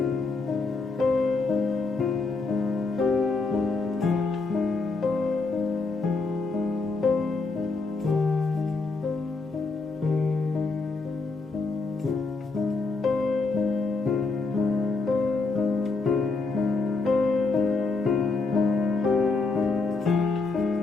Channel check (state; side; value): quieter; right; 3.9 dB